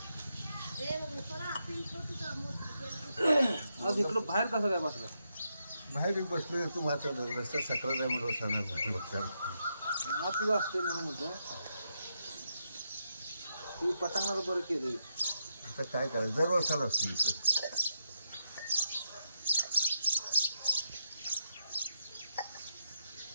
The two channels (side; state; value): both; inverted; correlation -0.83